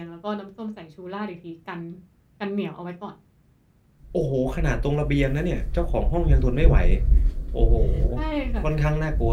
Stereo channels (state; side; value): identical; both; correlation 1.00